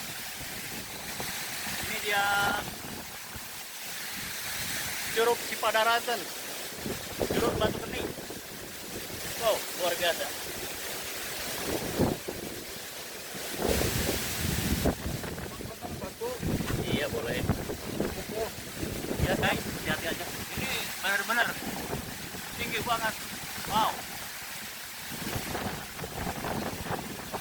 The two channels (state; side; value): identical; both; correlation 1.00